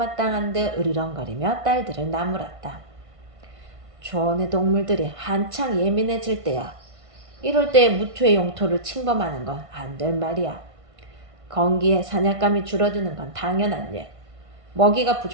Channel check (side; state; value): left; late; 1.5 ms